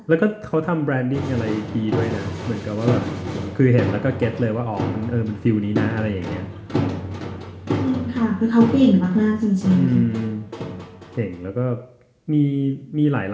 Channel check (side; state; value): both; identical; correlation 1.00